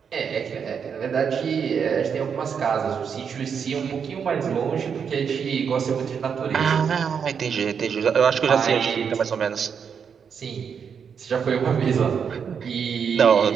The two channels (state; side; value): quieter; left; 6.9 dB